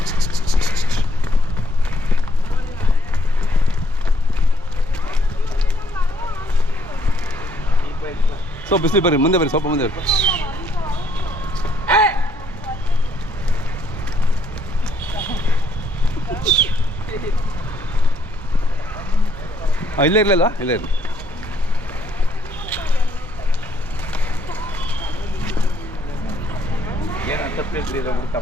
ಸೊ ಬಿಸಿಲು ಬರ್ರಿ ಮುಂದೆ ಬರ್ರಿ ಸ್ವಲ್ಪ ಮುಂದೆ ಬರ್ರಿ ಇಲ್ಲೇ ಇರಲಿಲ್ಲ ಇಲ್ಲೇ ಇರಲಿ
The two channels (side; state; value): both; normal; correlation 0.70